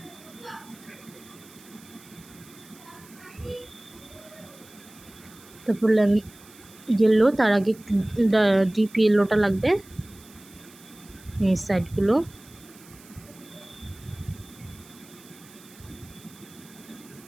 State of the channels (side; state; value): right; noise; hiss, 23 dB below the sound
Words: তারপর ইয়েলো, তার আগে ডিপ ইয়েলোটা লাগবে এই সাইডগুলো।